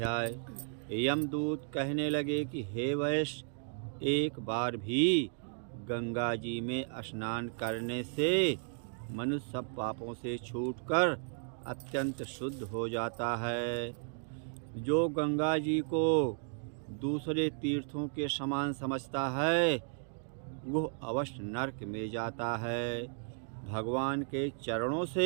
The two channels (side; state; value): left; silent; 55 dB below the other